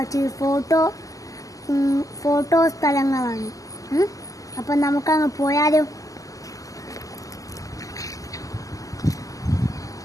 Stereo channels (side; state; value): right; late; 0.17 ms